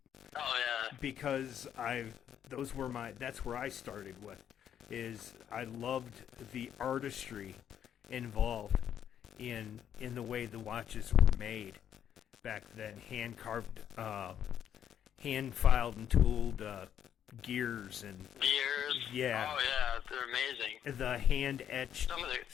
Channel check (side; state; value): right; quieter; 9.5 dB